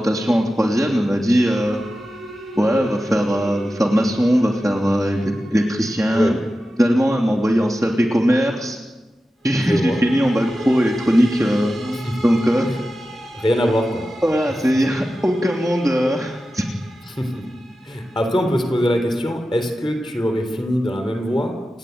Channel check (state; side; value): normal; both; correlation 0.93